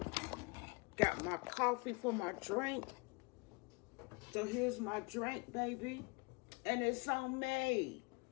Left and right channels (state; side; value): quieter; right; 30.5 dB